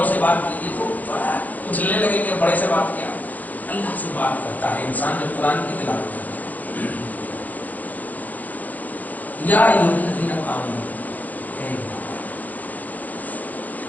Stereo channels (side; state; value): right; late; 0.081 ms